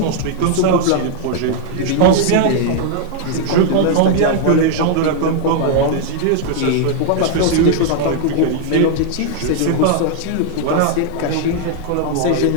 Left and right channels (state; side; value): different; both; correlation 0.00